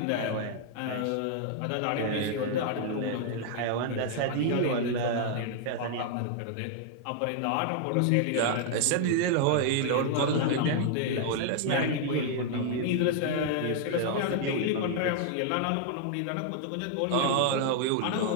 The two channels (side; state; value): both; different; correlation 0.00